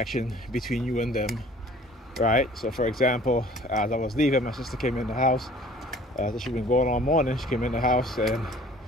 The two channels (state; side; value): normal; both; correlation 0.51